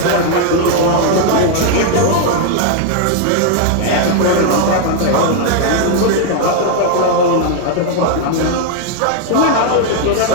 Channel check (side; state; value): both; different; correlation 0.00